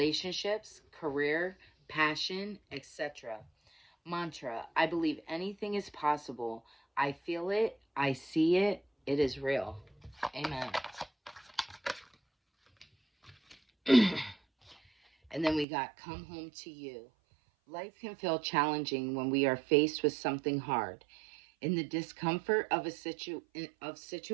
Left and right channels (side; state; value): left; drops out; at 15.7 s